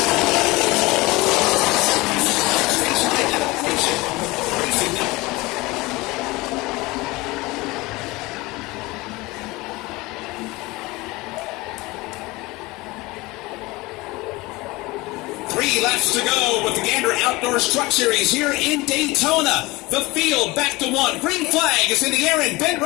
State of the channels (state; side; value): quieter; right; 21.9 dB